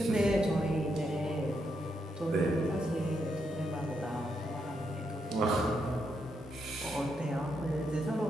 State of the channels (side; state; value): both; normal; correlation 0.80